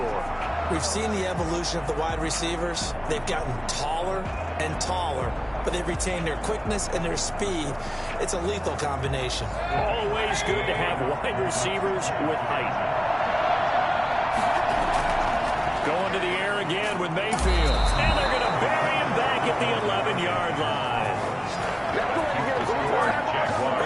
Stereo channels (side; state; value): both; identical; correlation 1.00